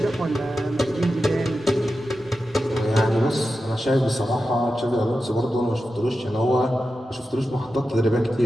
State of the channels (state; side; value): normal; both; correlation 0.91